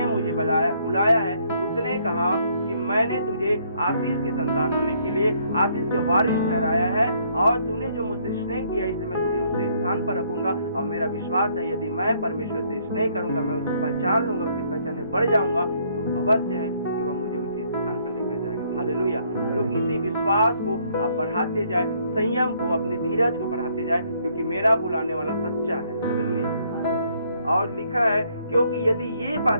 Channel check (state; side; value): inverted; both; correlation -0.67